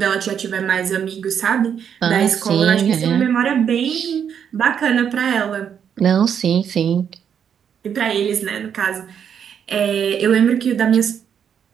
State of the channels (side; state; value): left; quieter; 8.1 dB